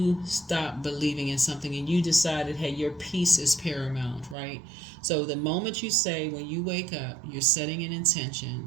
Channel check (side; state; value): left; drops out; at 4.4 s